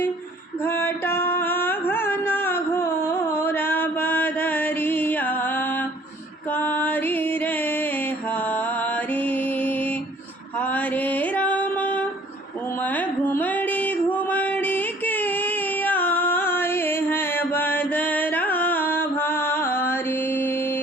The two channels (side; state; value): both; normal; correlation 0.55